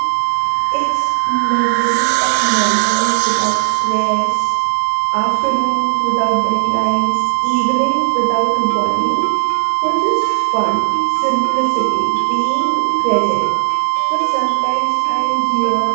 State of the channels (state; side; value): silent; left; digital silence